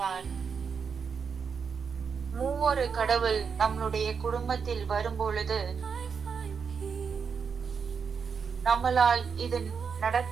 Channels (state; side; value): quieter; left; 6.1 dB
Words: மூவொரு கடவுள் நம்மளுடைய குடும்பத்தில் வரும்பொழுது நம்மளால் இது